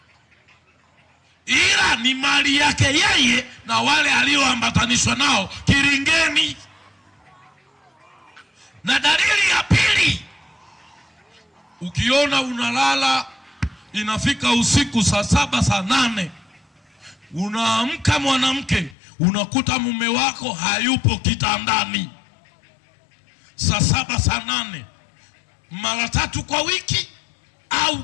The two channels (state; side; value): drops out; right; at 18.9 s